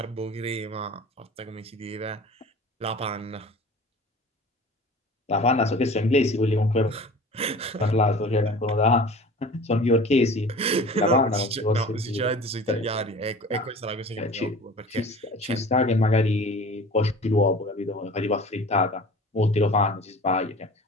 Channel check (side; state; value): both; normal; correlation 0.41